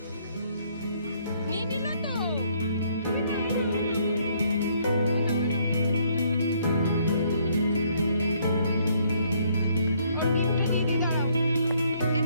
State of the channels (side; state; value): both; inverted; correlation -0.67